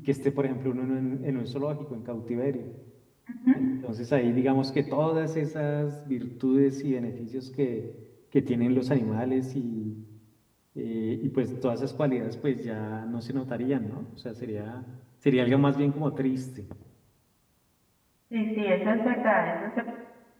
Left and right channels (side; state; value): both; identical; correlation 1.00